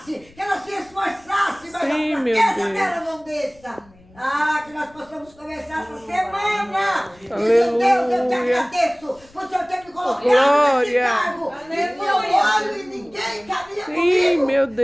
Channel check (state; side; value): noise; left; rumble, 28 dB below the sound